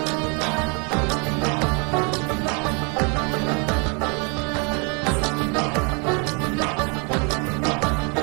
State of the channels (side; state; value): left; quieter; 34.0 dB